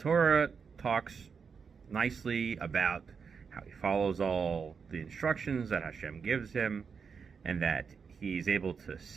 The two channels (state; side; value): quieter; left; 5.9 dB